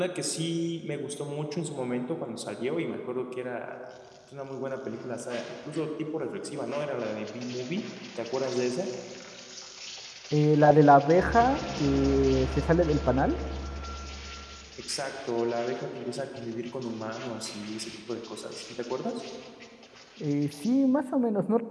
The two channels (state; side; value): identical; both; correlation 1.00